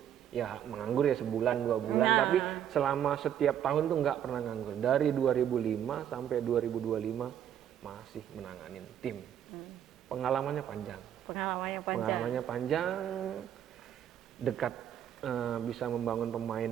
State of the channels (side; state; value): left; quieter; 10.0 dB